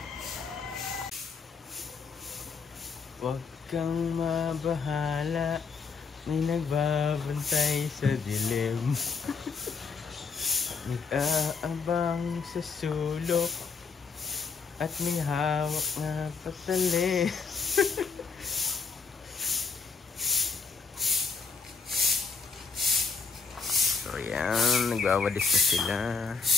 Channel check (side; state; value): right; quieter; 5.0 dB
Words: Huwag kang mabahala, may nagbabantay sa dilim. Nag-aabang sa sulok at may hawak na patali. So yan, nagwawadis na sila.